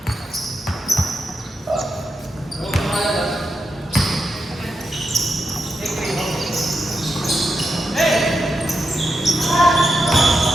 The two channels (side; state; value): both; normal; correlation 0.86